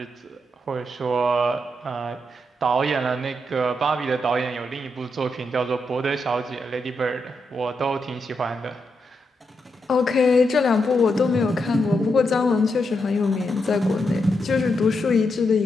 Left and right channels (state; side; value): normal; both; correlation 0.83